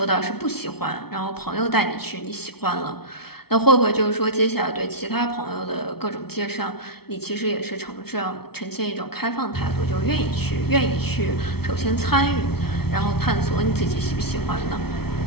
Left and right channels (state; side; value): late; right; 0.95 ms